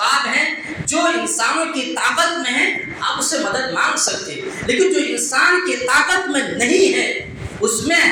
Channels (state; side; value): identical; both; correlation 1.00